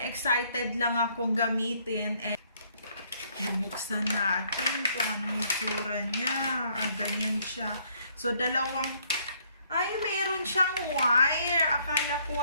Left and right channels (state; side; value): inverted; both; correlation -0.66